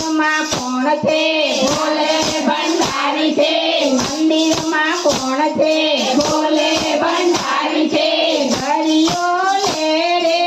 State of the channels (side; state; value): both; identical; correlation 1.00